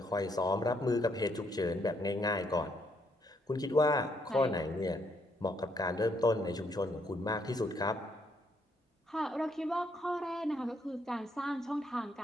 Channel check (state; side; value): normal; both; correlation 0.72